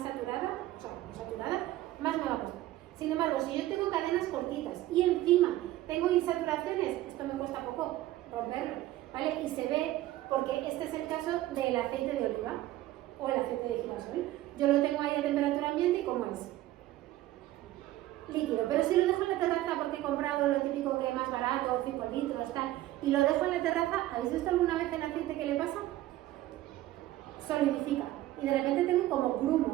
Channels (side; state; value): left; quieter; 15.4 dB